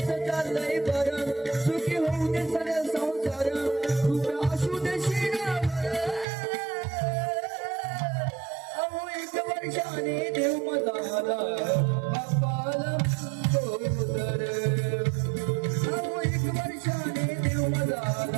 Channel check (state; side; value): drops out; left; at 6.2 s